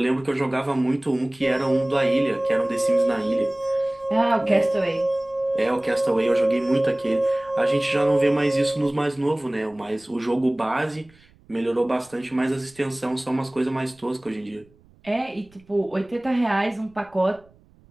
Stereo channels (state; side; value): noise; right; rumble, 29 dB below the sound